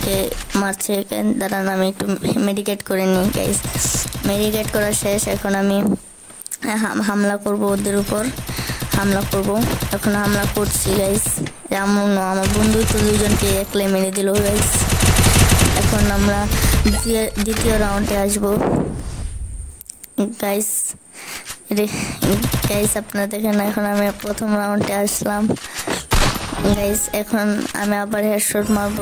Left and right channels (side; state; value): both; identical; correlation 1.00